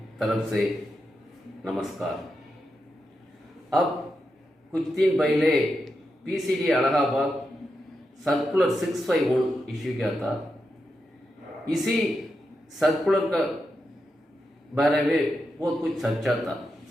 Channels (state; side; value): normal; both; correlation 0.87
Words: तरफ से नमस्कार। अब कुछ दिन पहले पीसीडी अलाहाबाद सर्कुलर 651 इश्यू किया था। इसी सर्कुलर का बारे में बहुत कुछ सच्चा था।